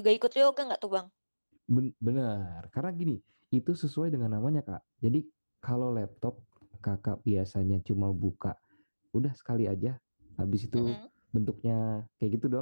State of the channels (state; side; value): inverted; both; correlation -1.00